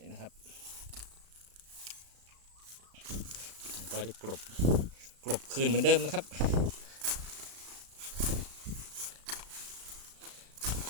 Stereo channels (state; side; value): late; left; 35 ms